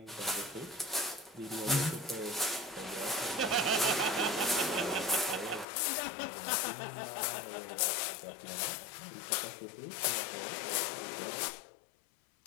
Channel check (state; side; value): drops out; right; at 5.7 s